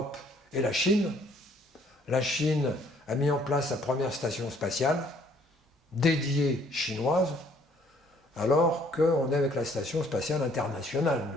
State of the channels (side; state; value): both; normal; correlation 0.61